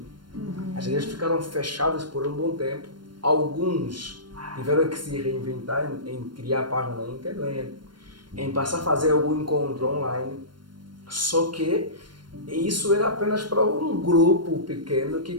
As igrejas ficaram fechadas por um bom tempo. Alguns tiveram que se reinventar em criar página na internet, em passar a fazer algum encontro online. Só que isso era apenas para um grupo pequeno que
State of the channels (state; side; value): late; left; 0.72 ms